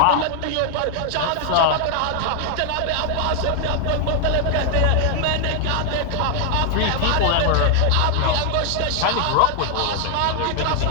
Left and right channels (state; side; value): different; both; correlation 0.00